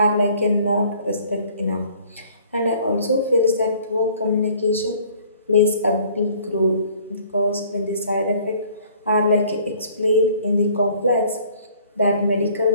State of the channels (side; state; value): both; inverted; correlation -0.55